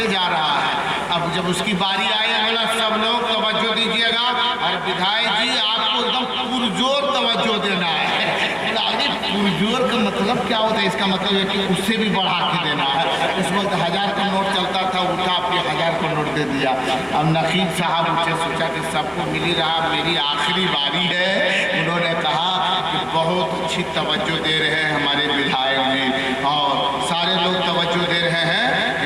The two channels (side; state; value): both; identical; correlation 1.00